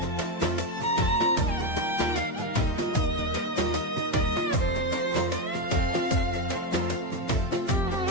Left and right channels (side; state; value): right; late; 2.4 ms